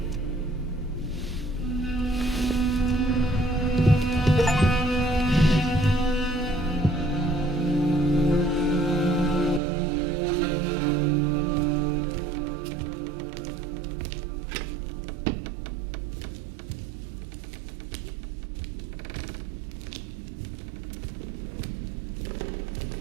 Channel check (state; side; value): drops out; left; at 9.6 s